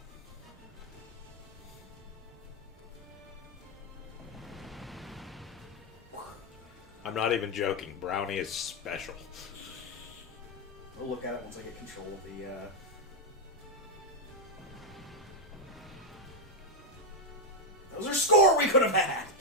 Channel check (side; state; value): both; normal; correlation 0.02